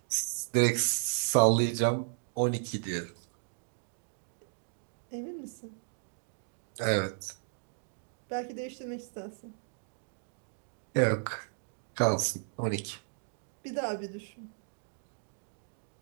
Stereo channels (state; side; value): silent; left; digital silence